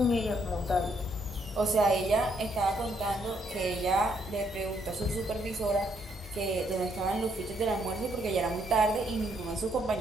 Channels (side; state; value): both; normal; correlation 0.72